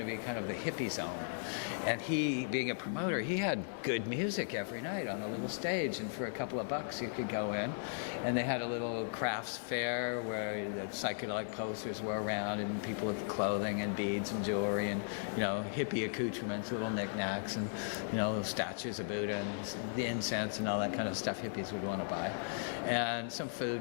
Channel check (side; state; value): right; silent; digital silence